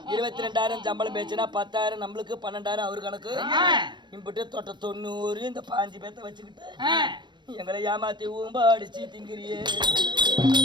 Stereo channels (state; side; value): late; left; 0.22 ms